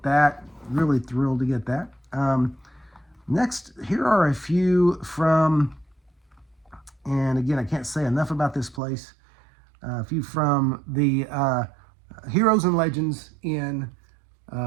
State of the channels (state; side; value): drops out; left; at 8.8 s